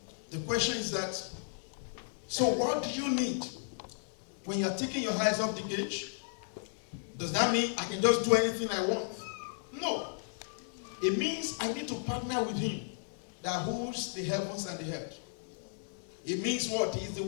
The question is that, so what do you need when you're taking your eyes off the gauge? Does that mean I can just do anything I want? No. It means I need to partner with him that holds the heavens and the earth. It means what? He's the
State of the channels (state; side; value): silent; right; digital silence